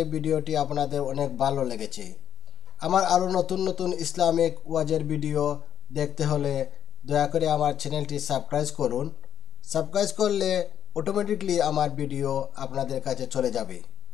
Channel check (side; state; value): right; quieter; 9.5 dB